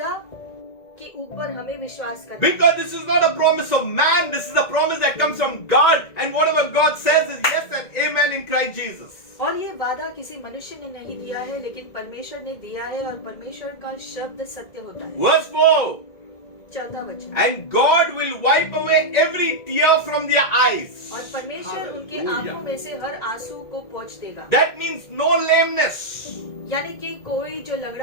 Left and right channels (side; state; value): right; late; 1.9 ms